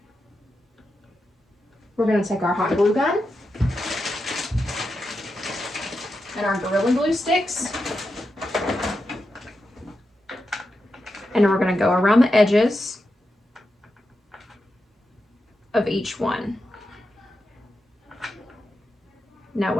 we're going to take our hot glue gun and our Gorilla Glue sticks, and we're going to go around the edges of each one. Now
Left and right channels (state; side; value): normal; both; correlation 0.88